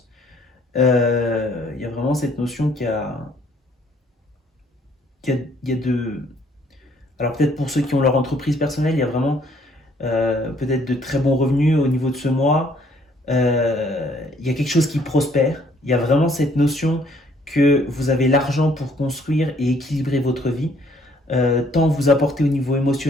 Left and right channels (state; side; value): normal; both; correlation 0.63